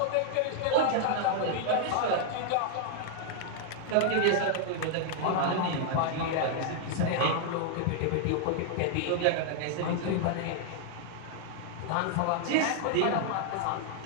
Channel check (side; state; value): both; different; correlation 0.00